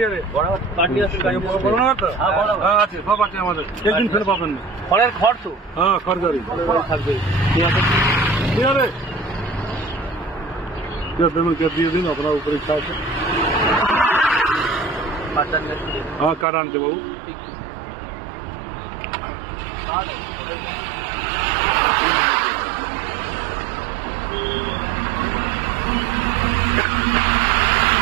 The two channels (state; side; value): drops out; left; at 16.4 s